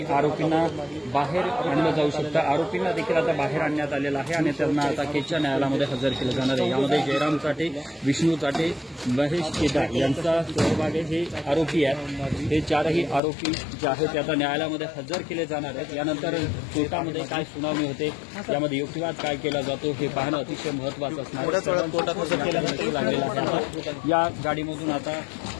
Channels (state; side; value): drops out; right; at 13.2 s